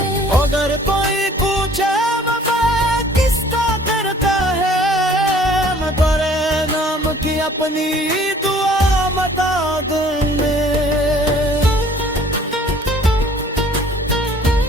अगर कोई पूछे वफा किसका करता है, मैं तेरे नाम की अपनी दुआ बता दूंगा।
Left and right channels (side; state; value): both; normal; correlation 0.54